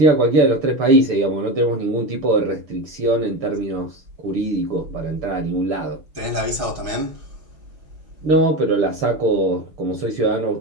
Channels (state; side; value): late; left; 6.3 ms